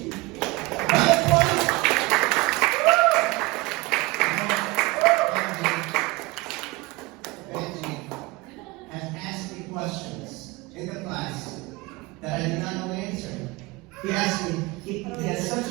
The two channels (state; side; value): quieter; left; 23.0 dB